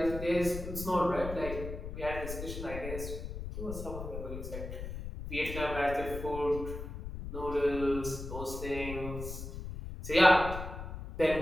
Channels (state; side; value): noise; left; rumble, 8 dB below the sound